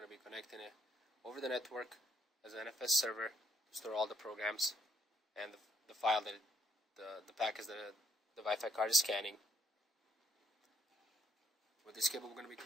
to be connecting it over the network as an NFS server to store all the programs and the file that the packets that the Wi-Fi card is scanning. With this cable, we're going to be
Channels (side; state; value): both; normal; correlation 0.72